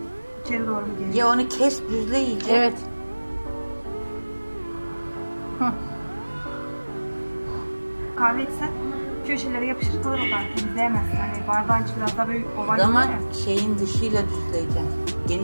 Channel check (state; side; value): inverted; both; correlation -1.00